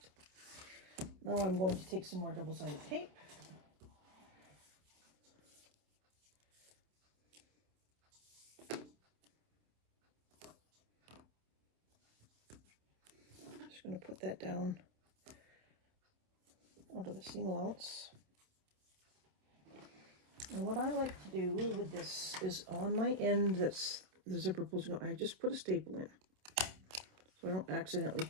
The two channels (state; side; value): late; left; 27 ms